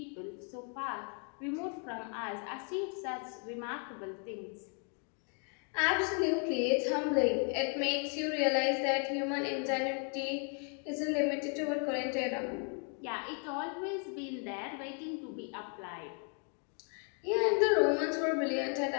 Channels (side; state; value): right; quieter; 39.2 dB